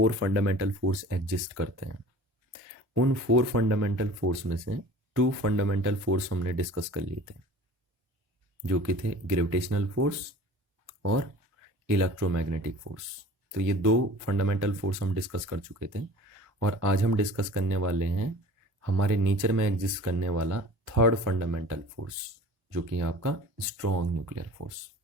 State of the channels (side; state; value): left; late; 1.1 ms